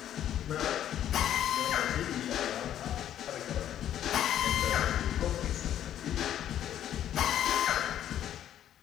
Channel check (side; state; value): right; quieter; 10.9 dB